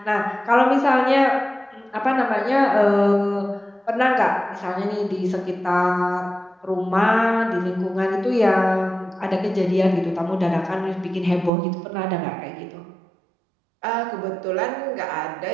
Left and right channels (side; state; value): left; drops out; at 11.5 s